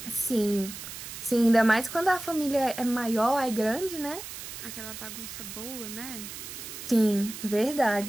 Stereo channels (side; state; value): right; noise; hiss, 10 dB below the sound